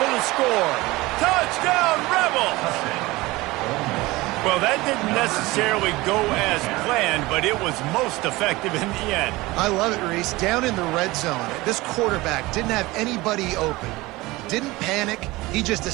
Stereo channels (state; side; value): quieter; left; 20.6 dB